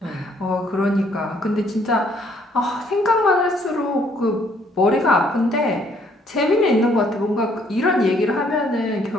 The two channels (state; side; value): normal; both; correlation 0.65